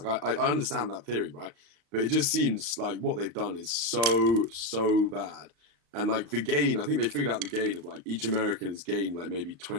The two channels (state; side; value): late; left; 35 ms